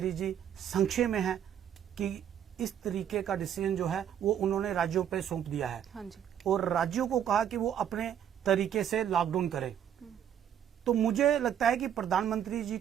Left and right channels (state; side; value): quieter; left; 9.6 dB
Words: जी संशय में हैं कि इस तरीके का डिसीजन जो है वो उन्होंने राज्यों पे सौंप दिया है। हाँ जी। और राज्यों को कहा कि वो अपने तरीके से लॉकडाउन करें। तो मुझे लगता है कि प्रधानमंत्री जी